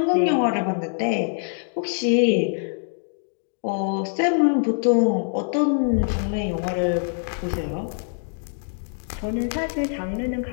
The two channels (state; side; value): silent; right; 63 dB below the other